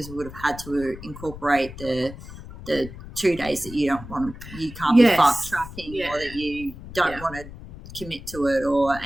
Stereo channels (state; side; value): noise; left; rumble, 14 dB below the sound